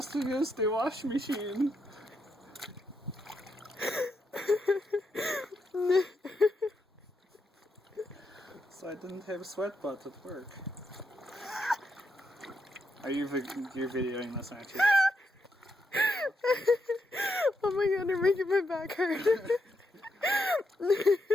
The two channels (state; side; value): normal; both; correlation 0.81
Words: to use the wash machine. So I didn't have sweat butt at work. Are you you're videoing this, aren't you? Oh my god, you're making my back hurt.